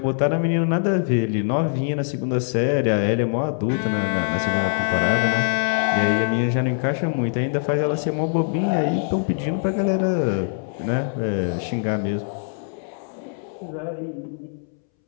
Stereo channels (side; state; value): right; silent; 64 dB below the other